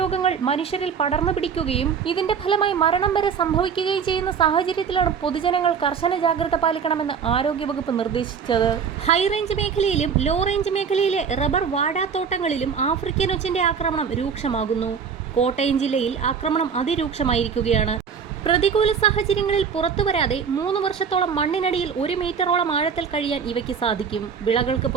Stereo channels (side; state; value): left; quieter; 6.6 dB